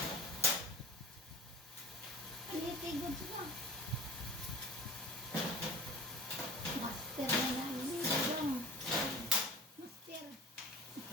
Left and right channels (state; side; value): normal; both; correlation 0.41